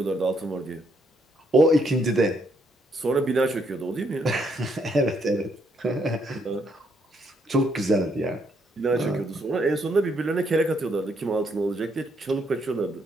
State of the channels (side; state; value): both; normal; correlation 0.73